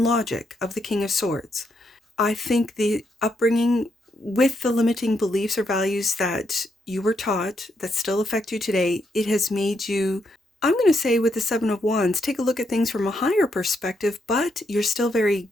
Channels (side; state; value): both; normal; correlation 0.78